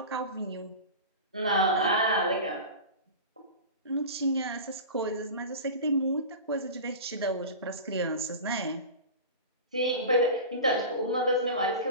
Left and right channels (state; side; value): inverted; both; correlation -0.30